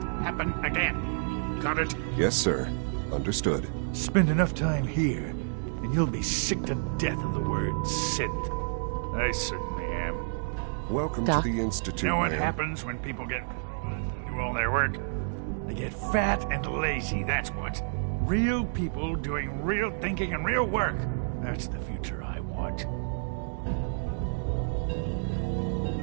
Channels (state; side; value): silent; left; digital silence